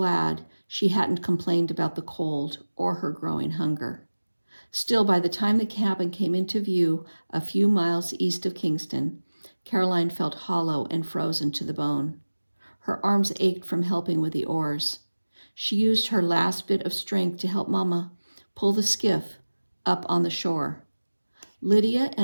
she hadn't complained about the cold or her growing hunger. Still, by the time the cabin came into view a few miles east of Kingston, Caroline felt hollow and frozen to the bone. Her arms ached from helping with the oars. She used her last bit of strength to help Mama pull the skiff up on the shore. Lydia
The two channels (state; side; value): inverted; both; correlation -1.00